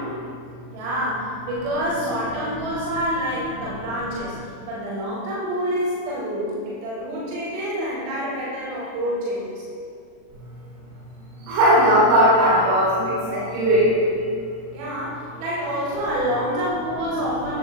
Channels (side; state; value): left; late; 40 ms